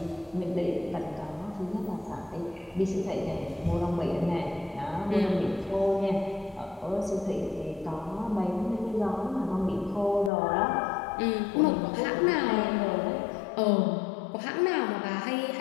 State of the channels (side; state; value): right; drops out; at 10.3 s